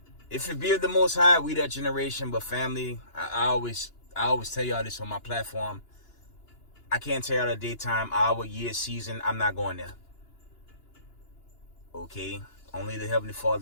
if it be of the Most High, we that generation. But family, I always tell y'all this on my platform. I can't tell y'all the daytime, hour, year, season. I'm not going there. Okay? Only the Heavenly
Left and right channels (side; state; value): right; late; 2.9 ms